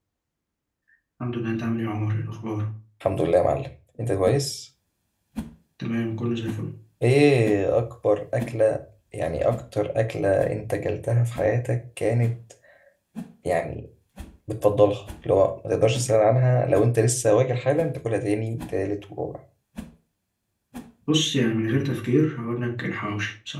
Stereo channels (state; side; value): identical; both; correlation 1.00